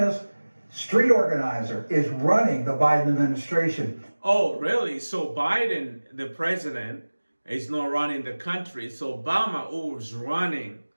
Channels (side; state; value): both; inverted; correlation -1.00